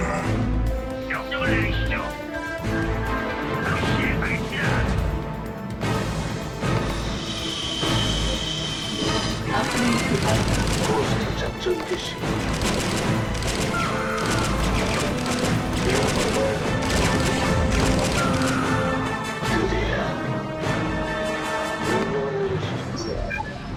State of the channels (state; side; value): identical; both; correlation 1.00